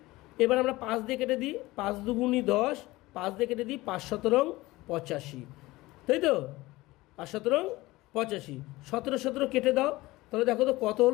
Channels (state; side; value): quieter; right; 19.6 dB